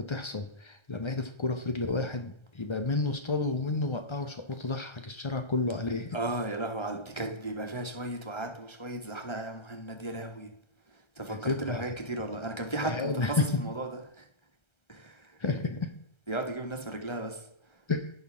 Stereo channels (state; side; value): late; right; 1.3 ms